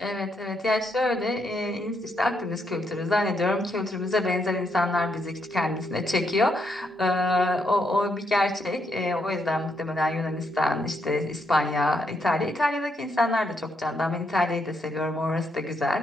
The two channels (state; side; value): normal; both; correlation 0.77